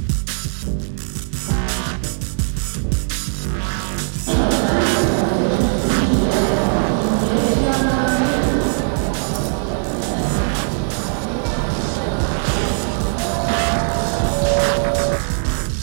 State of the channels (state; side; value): silent; left; digital silence